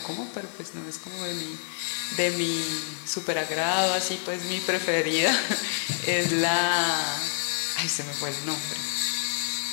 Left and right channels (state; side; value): silent; right; 60 dB below the other